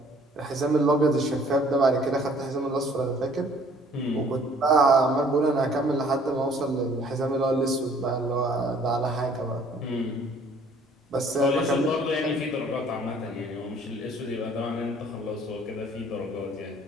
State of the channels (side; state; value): both; normal; correlation 0.57